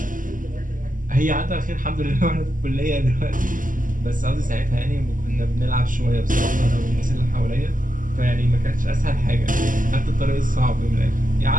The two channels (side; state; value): left; late; 0.38 ms